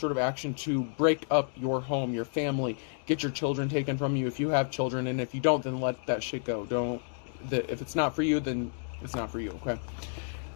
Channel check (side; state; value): right; silent; digital silence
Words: of action to break up your home, your family, get your children taken from you if you have children, and if you don't, then let that shit go. If it's not for you, then it's not for you, okay?